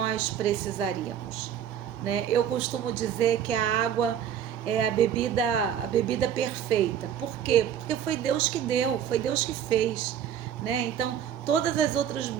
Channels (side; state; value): left; quieter; 9.4 dB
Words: precisaríamos, né? Eu costumo dizer que a água é a bebida perfeita. Por quê? Porque foi Deus que deu, foi Deus que fez, né? Então, todas as outras